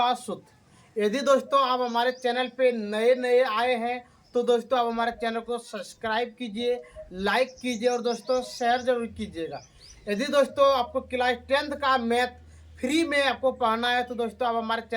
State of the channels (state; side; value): identical; both; correlation 1.00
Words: सूत्र। यदि दोस्तों आप हमारे चैनल पे नए नए आए हैं तो दोस्तों आप हमारे चैनल को सब्सक्राइब कीजिए, लाइक कीजिए और दोस्तों शेयर जरूर कीजिएगा। यदि दोस्तों आपको क्लास 10th का मैथ फ्री में आपको पढ़ना है तो दोस्तों आप हमारे